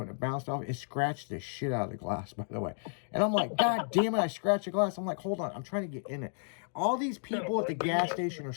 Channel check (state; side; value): silent; right; 56 dB below the other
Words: and it bounced off. It scratched the shit out of the glass, by the way. And I'm like, God damn it, I scratched the glass. I'm like, hold on, I'm trying to get in it. All these people at the gas station are